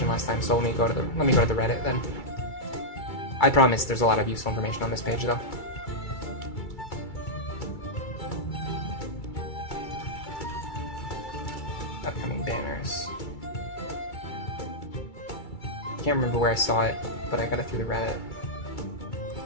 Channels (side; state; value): right; late; 2.3 ms